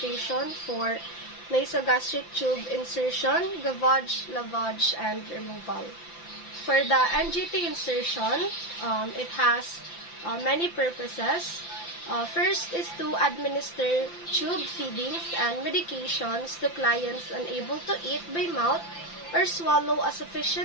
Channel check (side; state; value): right; late; 5.9 ms